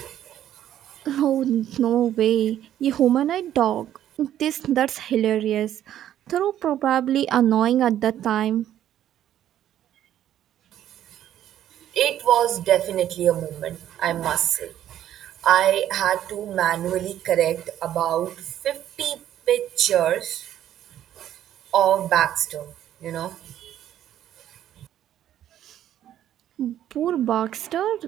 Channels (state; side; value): quieter; left; 11.5 dB